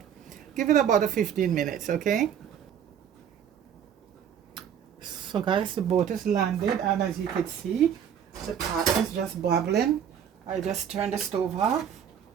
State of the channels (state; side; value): quieter; left; 8.6 dB